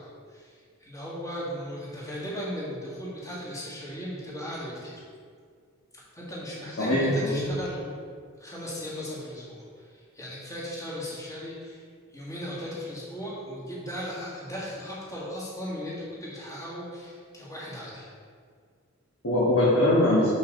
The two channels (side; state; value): both; normal; correlation 0.34